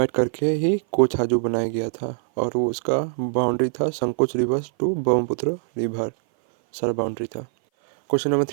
करके ही कोछाजू बनाया गया था और वो उसका बाउंड्री था Sankosh river to Brahmaputra river, सारा बाउंड्री था। Question number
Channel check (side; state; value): left; silent; 58 dB below the other